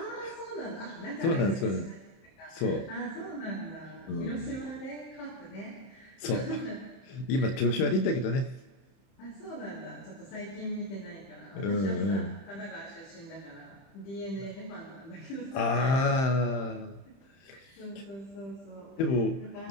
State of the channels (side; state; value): right; late; 30 ms